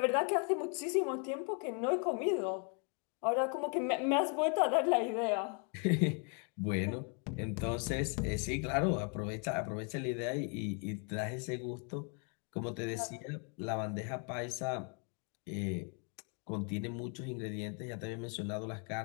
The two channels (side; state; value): right; quieter; 38.3 dB